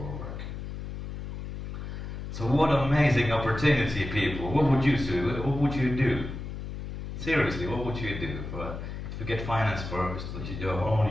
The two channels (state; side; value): noise; left; hum, 7 dB below the sound